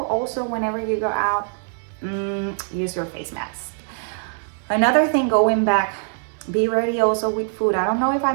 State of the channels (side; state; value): left; silent; digital silence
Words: also whenever you go out, use your face mask. Another thing, going back, be ready also with food. I don't know if I